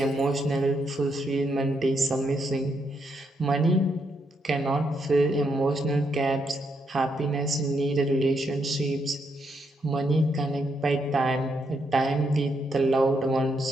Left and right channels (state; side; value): normal; both; correlation 0.78